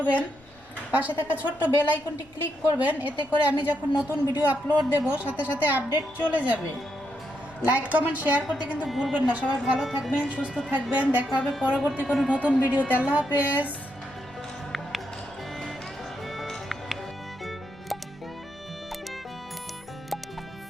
পাশে থাকা ছোট্ট বেল আইকনটি ক্লিক করবেন, এতে করে আমি যখন নতুন ভিডিও আপলোড দেব সাথে সাথে আপডেট চলে যাবে। লাইক কমেন্ট শেয়ার করতে কিন্তু ভুলবেন না। সবাই ভালো থাকবেন, সুস্থ থাকবেন, দেখা হবে পরবর্তী কোনো নতুন ভিডিওতে। আল্লাহ হাফেজ।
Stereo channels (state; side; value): noise; left; rumble, 27 dB below the sound